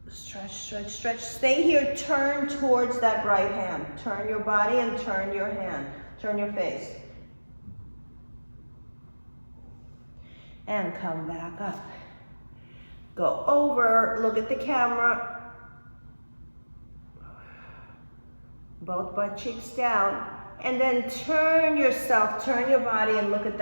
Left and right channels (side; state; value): both; inverted; correlation -1.00